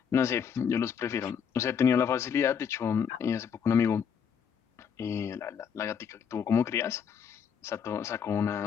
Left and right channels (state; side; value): quieter; right; 7.3 dB